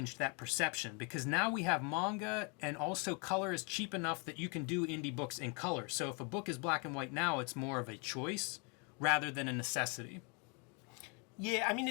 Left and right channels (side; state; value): right; quieter; 34.2 dB